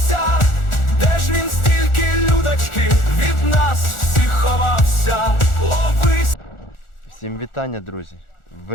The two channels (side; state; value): right; late; 1.4 ms